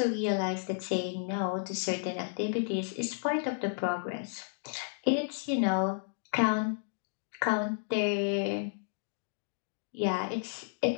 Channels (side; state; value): right; silent; digital silence